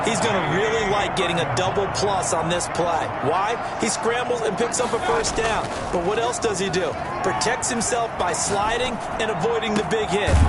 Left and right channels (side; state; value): both; identical; correlation 1.00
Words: he's going to really like getting a double plus on this play. Why? He scrambles and picks up a first down. But what else does he do? Protects himself by sliding and avoiding the big hit.